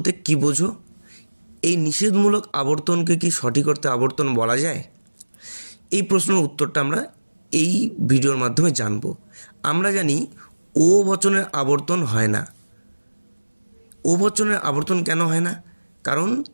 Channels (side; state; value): both; inverted; correlation -1.00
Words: কী বোঝো? এই নিষেধমূলক আবর্তনকে কি সঠিক অর্থে আবর্তন বলা যায়? এই প্রশ্নের উত্তরটা আমরা এই ভিডিওর মাধ্যমে জানব। আমরা জানি ও বচনের আবর্তন হয় না। ও বচনের আবর্তন কেন হয় না? কারণ